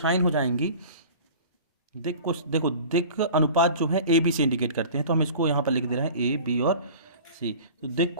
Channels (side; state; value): both; inverted; correlation -0.41